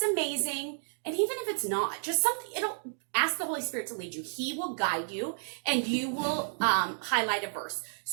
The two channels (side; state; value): left; silent; 57 dB below the other